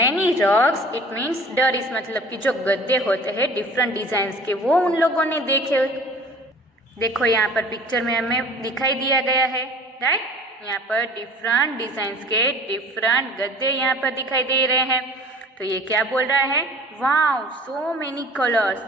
rugs. It means दरीस मतलब कि जो गद्दे होते हैं डिफरेंट डिजाइन के वो उन लोगों ने देखे. देखो यहाँ पर पिक्चर में हमें दिखाई दिया गया है. राइट. यहाँ पर डिफरेंट डिजाइन के डिफरेंट गद्दे यहाँ पर दिखाई दे रहे हैं. तो ये क्या बोल रहा है, वाओ सो मेनी कलर्स,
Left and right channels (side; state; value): both; normal; correlation 0.46